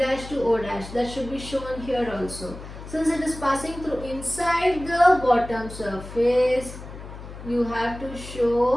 to O dash. That should be shown here also. Since it is passing through inside the bottom surface, you have to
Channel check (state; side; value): noise; left; hum, 13 dB below the sound